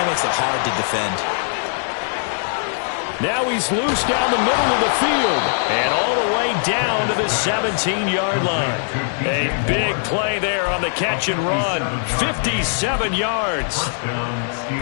makes it hard to defend. Now he's loose down the middle of the field and all the way down to the 17-yard line. A big play there on the catch and run. 57 yards.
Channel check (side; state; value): right; silent; digital silence